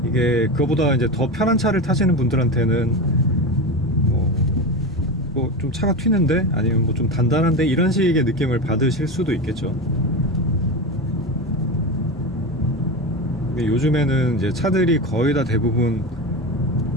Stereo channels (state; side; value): normal; both; correlation 0.21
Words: 이게 그거보다 이제 더 편한 차를 타시는 분들한테는 뭐 좀 차가 튀는데, 아니면 뭐 좀 단단한데, 이런 식의 느낌을 받으실 수도 있겠죠. 근데 요즘에는 이제 차들이 거의 다 대부분